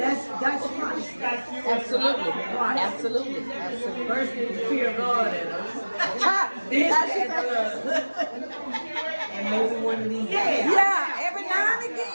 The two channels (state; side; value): inverted; both; correlation -1.00